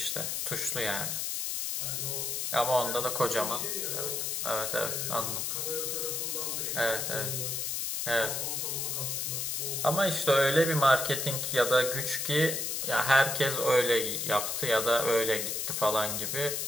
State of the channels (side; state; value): left; noise; hiss, 1 dB below the sound